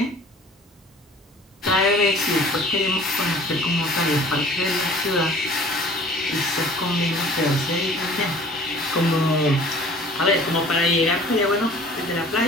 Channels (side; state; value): both; normal; correlation 0.48